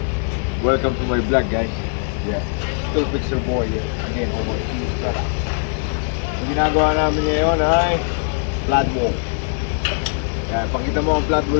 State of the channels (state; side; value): silent; right; 57 dB below the other